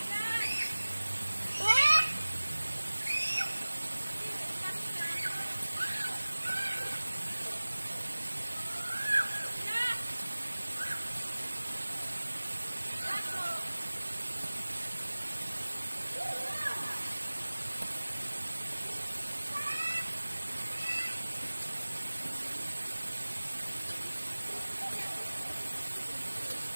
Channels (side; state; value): both; inverted; correlation -1.00